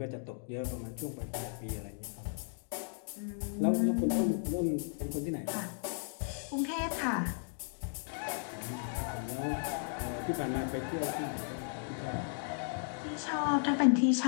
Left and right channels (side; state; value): right; silent; digital silence